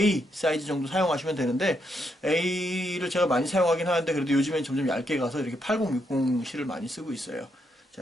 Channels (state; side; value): normal; both; correlation 0.79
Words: 사이즈 정도 사용하시면 되는데, A를 제가 많이 사용하긴 하는데 그래도 요즘엔 점점 얇게 가서 이렇게 80, 60 실을 많이 쓰고 있어요.